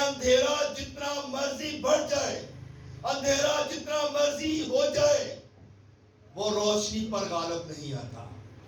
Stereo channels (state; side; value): identical; both; correlation 1.00